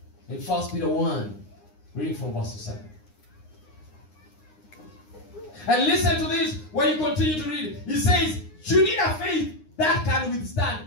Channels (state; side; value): late; right; 9.7 ms